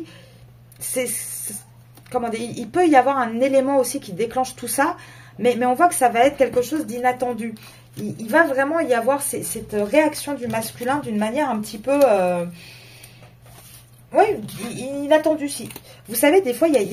comment dire, il peut y avoir un élément aussi qui déclenche tout ça, mais on voit que ça va être quelque chose d'inattendu. Il va vraiment y avoir cette réaction du masculin d'une manière un petit peu... oui, inattendue. Si. Vous savez, des fois, il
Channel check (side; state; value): both; identical; correlation 1.00